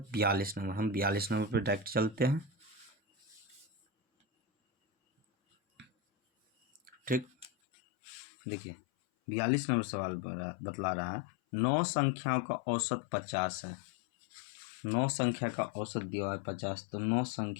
42 नंबर। हम 42 नंबर पे डायरेक्ट चलते हैं। ठीक, देखिए 42 नंबर सवाल बतला रहा है 9 संख्याओं का औसत 50 है। 9 संख्या का औसत दिया है 50, तो 9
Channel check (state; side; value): drops out; right; at 7.5 s